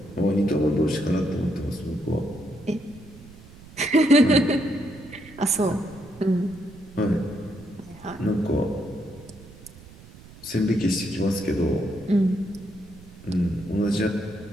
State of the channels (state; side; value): noise; right; rumble, 20 dB below the sound